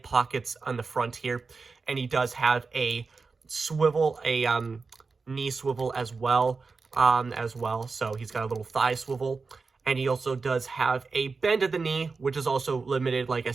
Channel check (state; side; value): quieter; left; 4.4 dB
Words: pockets on the front here. And he does have a swivel, knee swivel as well. So he's got a little thigh swivel, and he also does have a bend of the knee, which is also limited, like I